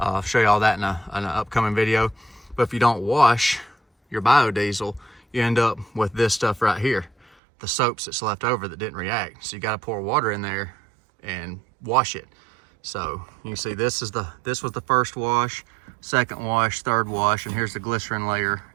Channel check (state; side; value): drops out; left; at 7.2 s